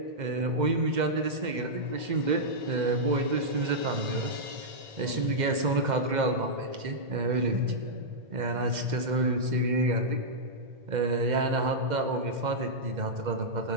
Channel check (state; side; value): late; left; 2.1 ms